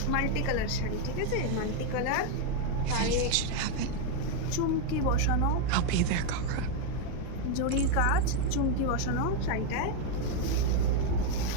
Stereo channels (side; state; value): both; different; correlation 0.01